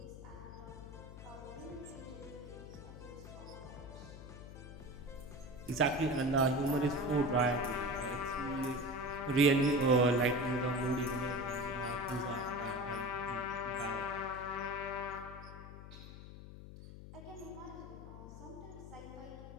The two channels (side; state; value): left; noise; hum, 13 dB below the sound